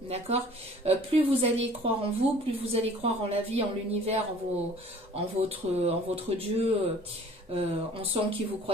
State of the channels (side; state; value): both; normal; correlation 0.50